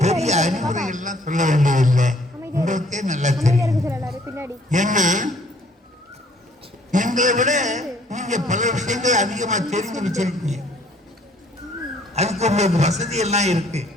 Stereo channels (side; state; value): both; normal; correlation 0.60